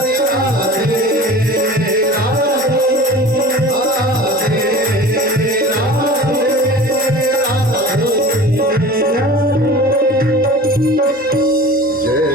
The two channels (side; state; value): both; normal; correlation 0.39